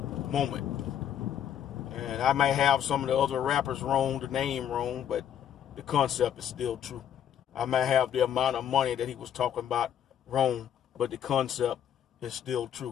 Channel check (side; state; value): right; quieter; 9.6 dB